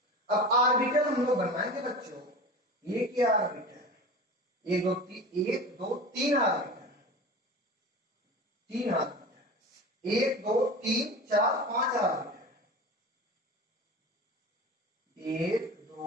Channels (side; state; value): both; normal; correlation 0.33